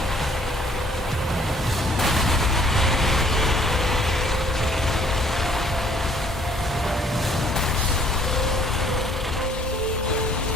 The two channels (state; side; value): normal; both; correlation 0.60